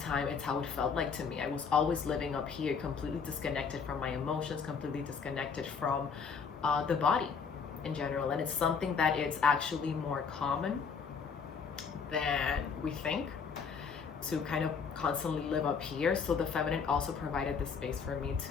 time, it's how it felt like to me. I was always living up here, completely disconnected from my emotions, completely disconnected from the body in general. And it's something that it's actually more common than we think, to kind of constantly live up here. So the feminine also provided the space for me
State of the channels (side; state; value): right; quieter; 5.8 dB